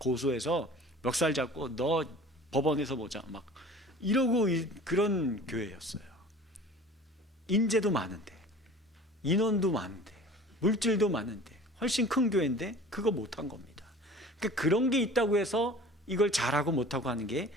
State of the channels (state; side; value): normal; both; correlation 0.43